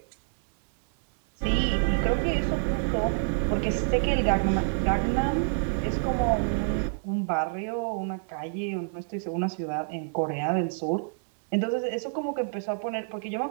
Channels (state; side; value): silent; left; 60 dB below the other